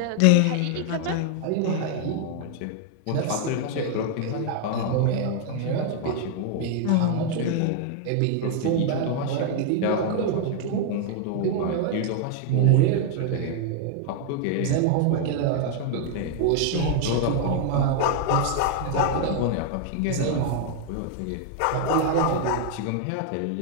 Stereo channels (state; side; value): different; both; correlation 0.00